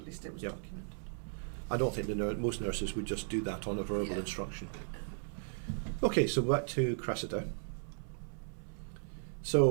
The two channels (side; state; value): left; silent; 54 dB below the other